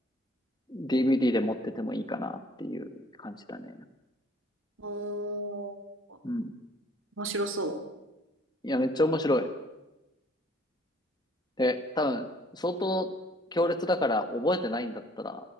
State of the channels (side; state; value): both; normal; correlation 0.58